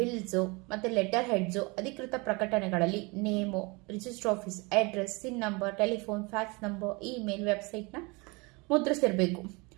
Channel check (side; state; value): left; quieter; 27.1 dB